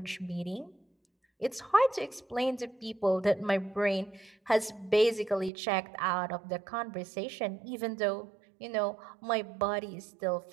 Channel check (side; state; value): left; drops out; at 5.5 s